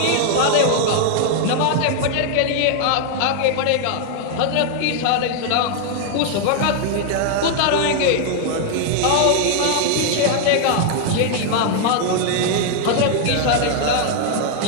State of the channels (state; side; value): different; both; correlation 0.00